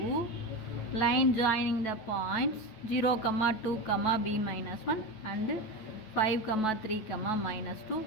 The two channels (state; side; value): late; right; 9.2 ms